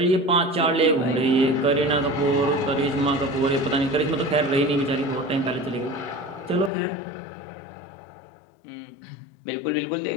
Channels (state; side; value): drops out; right; at 6.7 s